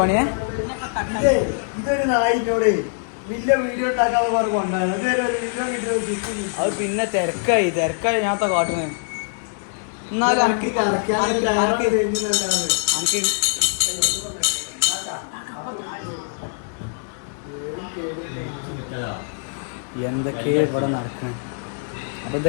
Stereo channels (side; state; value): right; silent; digital silence